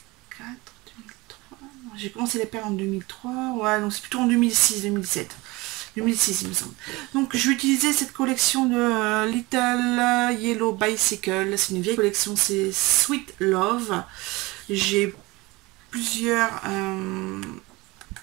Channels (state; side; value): quieter; left; 22.7 dB